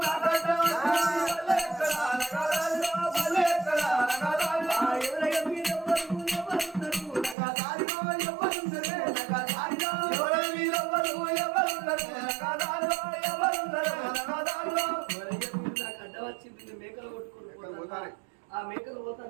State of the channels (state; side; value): drops out; left; at 7.4 s